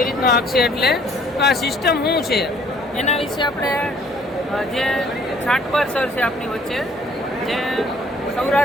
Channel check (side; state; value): both; normal; correlation 0.60